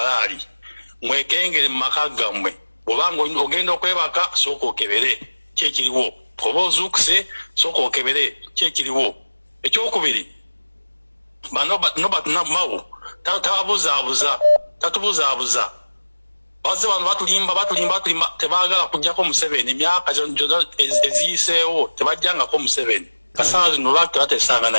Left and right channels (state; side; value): inverted; both; correlation -1.00